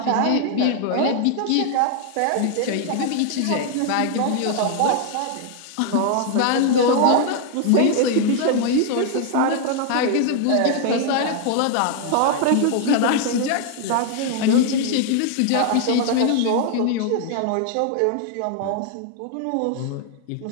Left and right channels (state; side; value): different; both; correlation 0.00